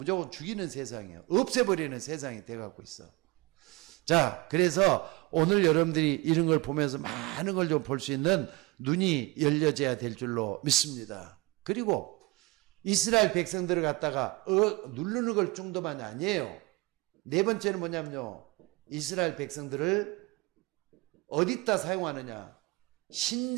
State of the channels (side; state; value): left; quieter; 22.2 dB